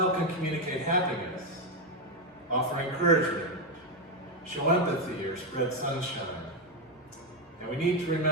can communicate happiness, offer encouragement, show empathy, or spread sunshine. And we need to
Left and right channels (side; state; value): both; normal; correlation 0.06